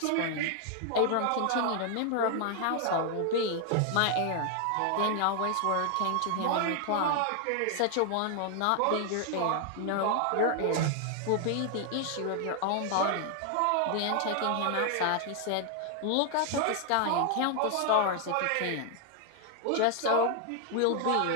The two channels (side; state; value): both; different; correlation 0.00